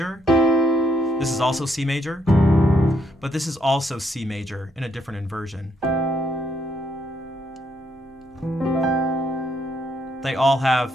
This is also C major. But this is also C major in a different inversion. They all have,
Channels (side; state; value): both; normal; correlation 0.74